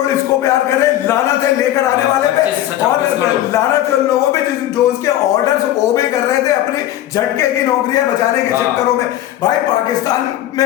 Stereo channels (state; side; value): quieter; right; 13.2 dB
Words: इसको प्यार करे, लानत है लेकर आने वाले पे, और लानत है उन लोगों पे जो उसके ऑर्डर्स ओबे कर रहे थे अपनी झटके की नौकरियां बचाने के चक्करों में। भाई पाकिस्तान में